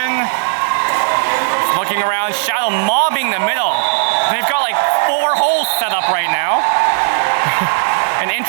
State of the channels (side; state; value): left; silent; 58 dB below the other